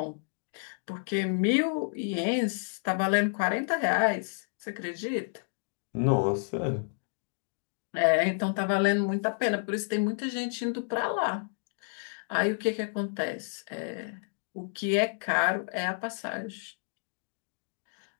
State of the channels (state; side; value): silent; right; digital silence